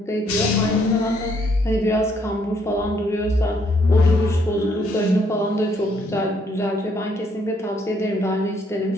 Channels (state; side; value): normal; both; correlation 0.69